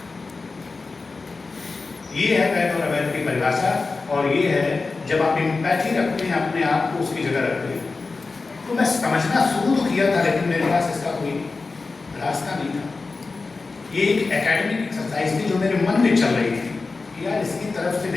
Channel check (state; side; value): quieter; right; 4.0 dB